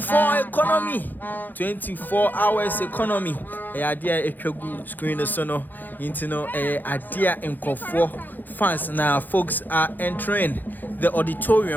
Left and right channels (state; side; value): late; right; 0.087 ms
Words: economy, 24 hours economy. Idea a screen sono into no idea in Kofor fans now. Folks are entering the